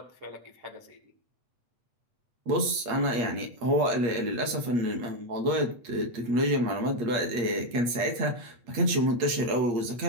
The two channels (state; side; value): late; left; 8.5 ms